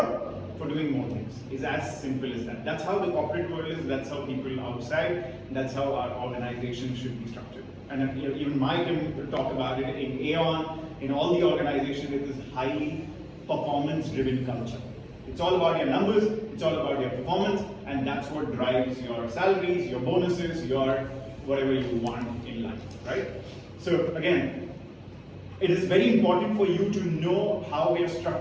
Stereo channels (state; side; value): identical; both; correlation 1.00